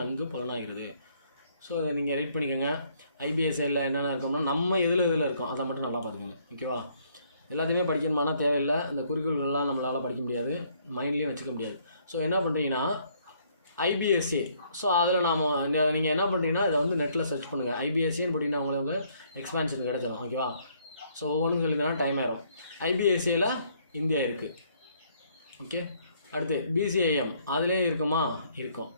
பலனாகிறது. ஸோ இதை நீங்கள் ரீட் பண்ணிக்கோங்க. IBSL என்னென்ன இருக்கோம்னா நம்ம எதில் இருக்கோம் அதை மட்டும் நல்லா பார்த்துக்கோங்க. ஓகேவா. எல்லாத்தையுமே படிக்கணுமானா தேவையில்லை, இந்த குறிக்கோள்கள்லாம் நம்மளால் படிக்க முடியாது, மைண்ட்லேயும் வச்சுக்க முடியாது. ஸோ என்ன பண்ணுறீங்கன்னா IBSA. ஸோ அதில் நீங்கள் என்ன பண்ணுறீங்கன்னா இதை வந்து நெட்டில் சர்ச் பண்ணுங்கள். IBSAன்னு போட்டிங்கன்னா உங்களுக்கு எக்ஸ்பான்ஷன் கிடச்சிடும். ஓகேவா. ஸோ ஒவ்வொன்றும் சொல்லிங்கன்னா டைம் ஆயிரும். IBSAல இந்தியா இருக்குது. ஓகே. அடுத்து BCIM அதிலே இருக்குமா? இருக்கும்,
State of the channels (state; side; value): inverted; both; correlation -0.66